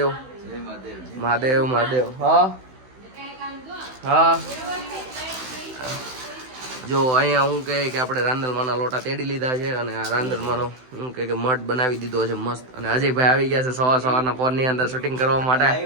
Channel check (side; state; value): left; late; 16 ms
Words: મહાદેવ મહાદેવ. હા હા જો અહીંયા હું કહે કે આપણે રાંદલમાંના લોટા તેડી લીધા છે અને આ રાંદલમાંનો હું કહે કે મઠ બનાવી દીધો છે મસ્ત. અને અજયભાઈ આવી ગયા છે સવારના પોરની અંદર શૂટિંગ કરવા માટે.